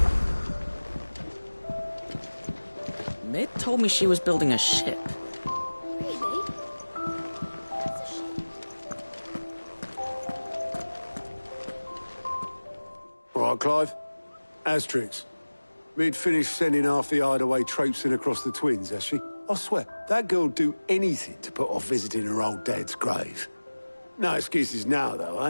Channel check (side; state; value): both; inverted; correlation -1.00